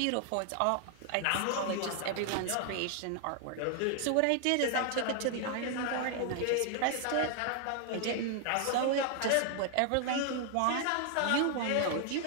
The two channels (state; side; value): different; both; correlation 0.00